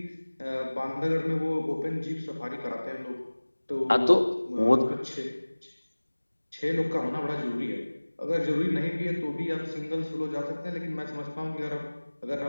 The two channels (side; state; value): both; inverted; correlation -1.00